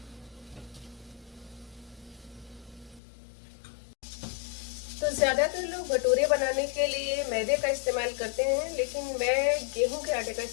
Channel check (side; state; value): right; drops out; at 3.0 s